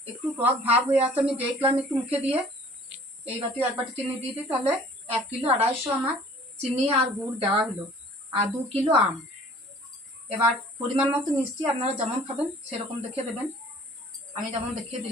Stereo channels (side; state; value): both; normal; correlation 0.51